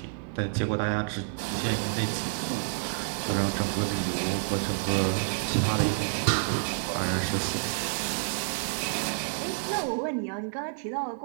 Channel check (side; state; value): left; silent; digital silence